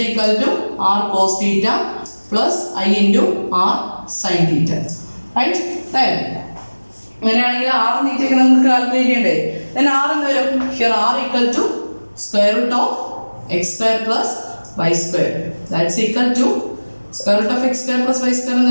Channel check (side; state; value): both; inverted; correlation -1.00